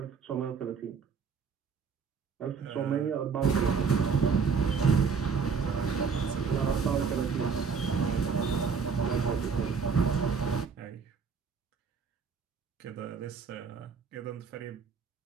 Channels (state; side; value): quieter; left; 5.7 dB